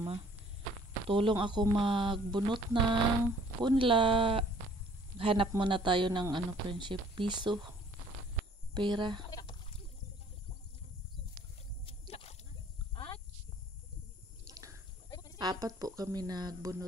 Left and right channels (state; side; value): normal; both; correlation 0.57